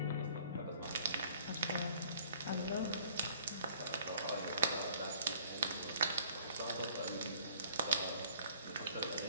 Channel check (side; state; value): both; inverted; correlation -0.56